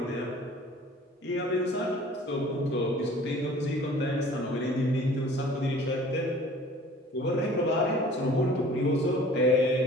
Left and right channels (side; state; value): both; normal; correlation 0.49